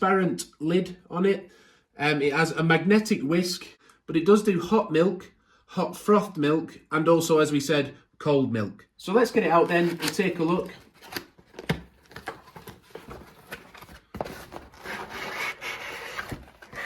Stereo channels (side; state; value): both; identical; correlation 1.00